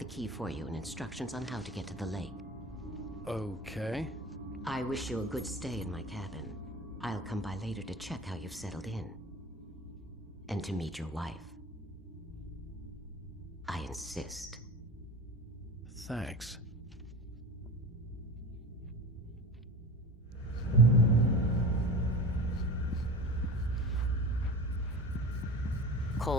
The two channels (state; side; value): normal; both; correlation 0.33